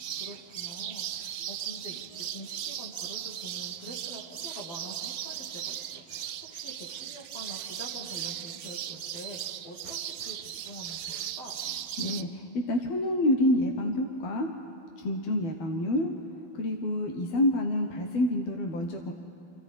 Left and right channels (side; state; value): right; late; 11 ms